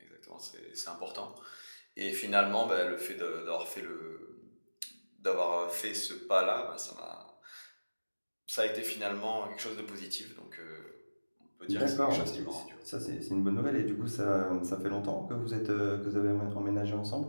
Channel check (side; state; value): both; inverted; correlation -1.00